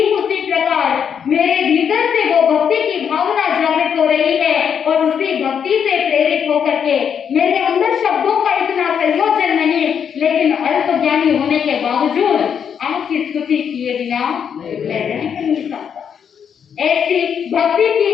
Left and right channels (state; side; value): quieter; right; 7.7 dB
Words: उसी प्रकार मेरे भीतर से वो भक्ति की भावना जागृत हो रही है और उसी भक्ति से प्रेरित होकर के मेरे अंदर शब्दों का इतना संयोजन नहीं, लेकिन अल्प ज्ञानी होने के बावजूद आपकी स्तुति किए बिना मैं रह नहीं सकता। ऐसी भक्ति की